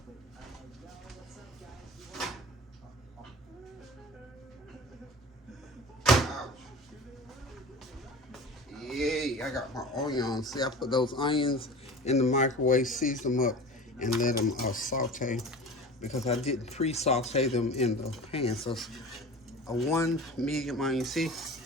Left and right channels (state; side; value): normal; both; correlation 0.37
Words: Yay, I got my onions. See, I put those onions in the microwave, season them up, and let them saute, because I didn't pre-saute them in the pan. So it's a 1 medium onion. See,